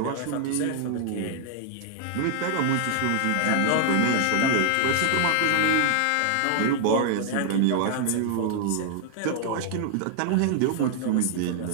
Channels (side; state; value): both; different; correlation 0.00